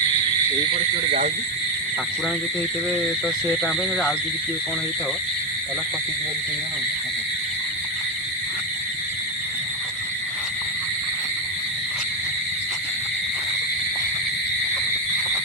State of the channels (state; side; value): normal; both; correlation 0.09